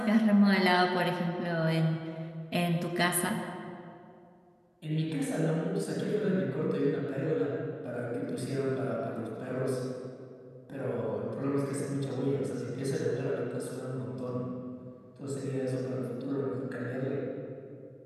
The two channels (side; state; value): both; identical; correlation 1.00